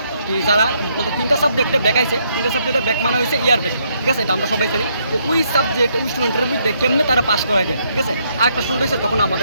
কি যারা বলতে 3টা সাবজেক্টে ব্যাক আইছে, 3টা সাবজেক্টে ব্যাক মানে হয়েছে ইয়ার ব্যাক, ঠিক আছে, এটা আমরা সবাই জানি। তো ওই সাবজেক্ট ওই স্টুডেন্টের মধ্যে কেমনে তারা পাস করায় যায়, ঠিক আছে। আর একটা স্টুডেন্ট হয়েছে তখন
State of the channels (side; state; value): both; inverted; correlation -0.73